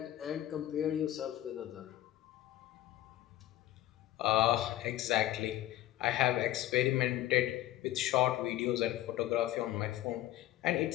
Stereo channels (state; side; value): quieter; right; 14.6 dB